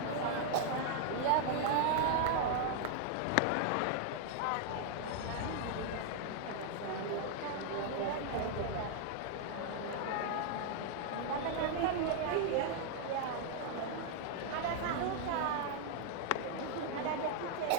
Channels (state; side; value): different; both; correlation 0.00